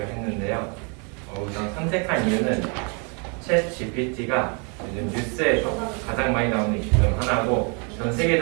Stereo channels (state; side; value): quieter; left; 35.9 dB